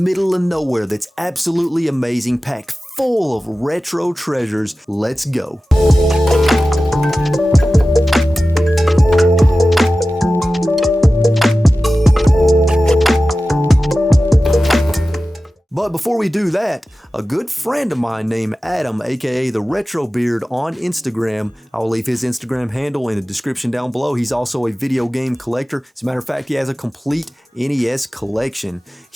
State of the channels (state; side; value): normal; both; correlation 0.95